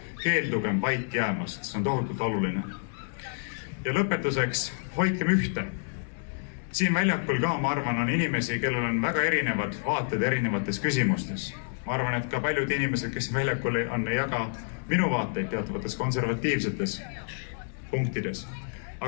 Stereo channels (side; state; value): right; silent; digital silence